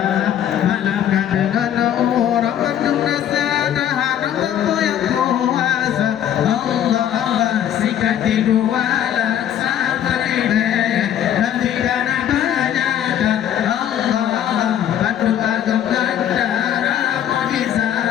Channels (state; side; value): quieter; right; 10.4 dB